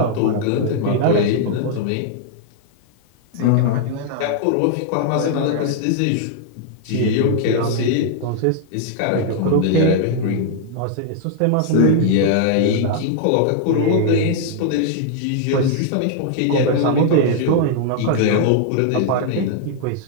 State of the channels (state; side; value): different; both; correlation -0.01